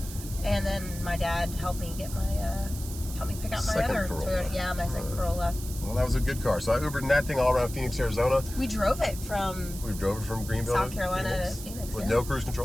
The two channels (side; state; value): right; noise; hiss, 12 dB below the sound